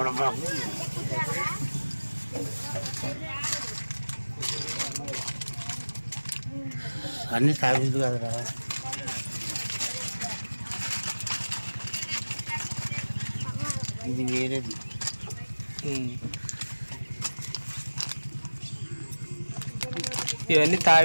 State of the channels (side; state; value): both; inverted; correlation -1.00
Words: పడబాబు. అన్నీ తాగేది కదరా. ఇది వేరేది. ఇవన్నీ